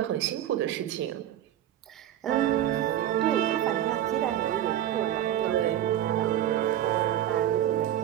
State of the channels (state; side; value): quieter; left; 11.8 dB